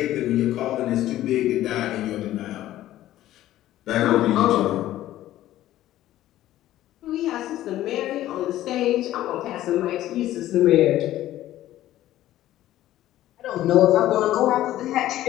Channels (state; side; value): quieter; right; 14.0 dB